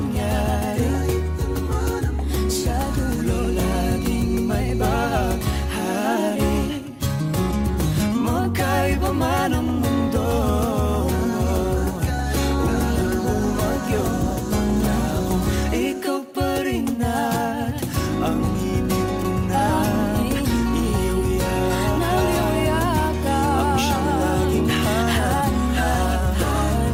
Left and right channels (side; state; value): both; identical; correlation 1.00